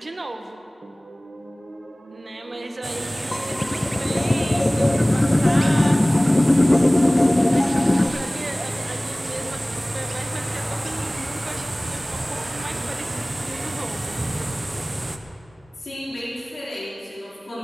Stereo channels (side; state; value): both; normal; correlation 0.98